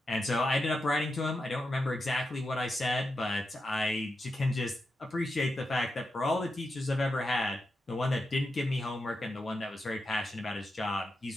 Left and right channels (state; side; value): normal; both; correlation 0.88